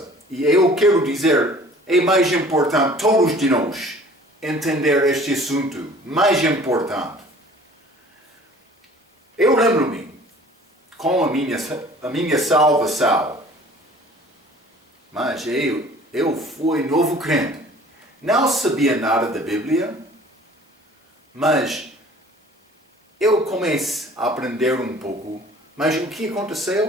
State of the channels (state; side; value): normal; both; correlation 0.49